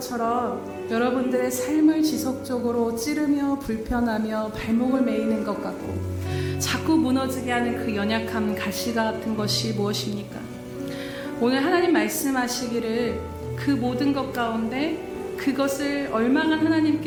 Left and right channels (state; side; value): identical; both; correlation 1.00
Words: 여러분들의 삶을 지속적으로 찌르며 불편하며 발목을 매이는 것 같고 자꾸 무너지게 하는 그 연약함, 가시 같은 것이 무엇입니까? 오늘 하나님 말씀하시기를 그 모든 것 가운데 그것을 얼마간